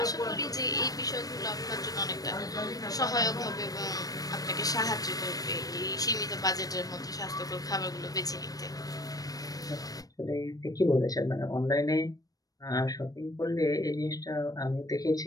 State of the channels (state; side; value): late; right; 0.18 ms